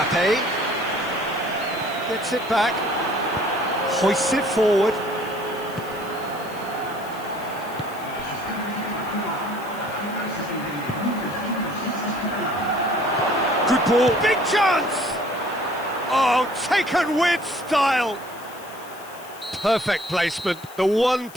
gets it back, hoists it forward. Good ball, big chance! Oh, taken with style! Perfect placement, the one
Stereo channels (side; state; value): left; noise; hiss, 20 dB below the sound